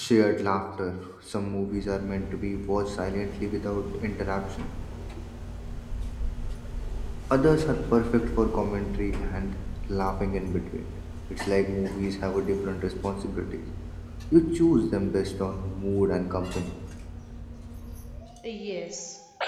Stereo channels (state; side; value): identical; both; correlation 1.00